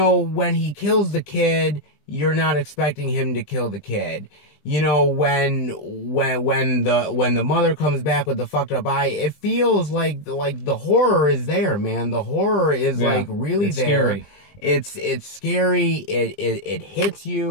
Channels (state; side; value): late; right; 20 ms